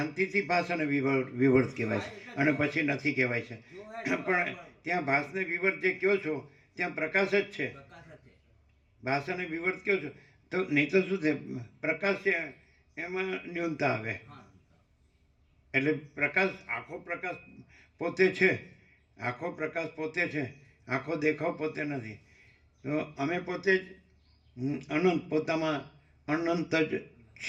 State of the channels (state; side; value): identical; both; correlation 1.00